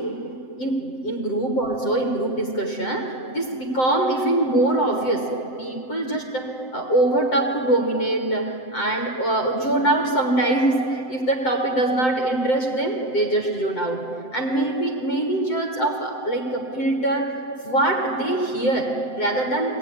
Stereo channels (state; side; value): late; right; 7.8 ms